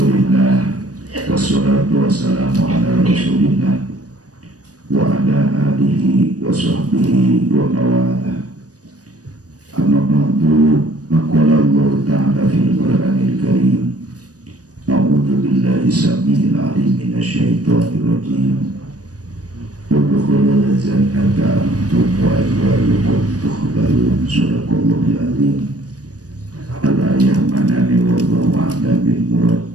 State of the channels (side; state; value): left; late; 0.68 ms